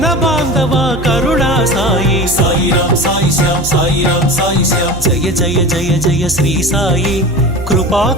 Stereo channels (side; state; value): right; noise; hum, 11 dB below the sound